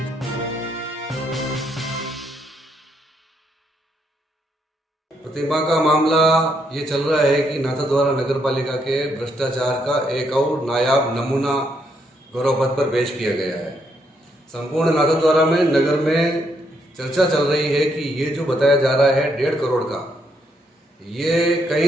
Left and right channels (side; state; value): both; normal; correlation 0.75